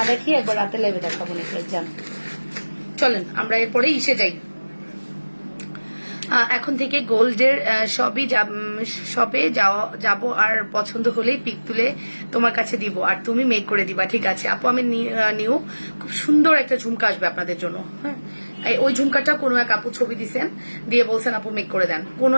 দেখিয়ে একবার রাতের লাইভে দেখাবো নেকলেস, যান। চলেন আমরা এরপরে ইসে যাই, এখন থেকে গোল্ডের সবে যাব, আর পছন্দ হলেই পিক তুলে তোমার কাছে দিব, আর তুমি মেক করে দিবা, ঠিক আছে আপু। আমি নিউ খুব সুন্দর একটা ঝুমকা আসবে আপনাদের জন্য। হ্যাঁ, ওই ঝুমকাটা কোনো এক আপু ছবি দিছেন, দিয়ে বলছেন আপু মেক করে দেন, কোনো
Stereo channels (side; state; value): both; inverted; correlation -1.00